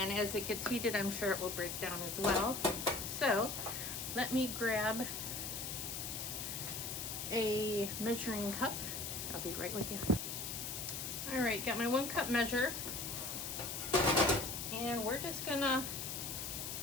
as it gets heated, I'm sure it will break down as well. So, let me grab a measuring cup. I'll be right with you. Alright, got my 1 cup measure. And we're just gonna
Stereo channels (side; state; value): left; noise; hiss, 5 dB below the sound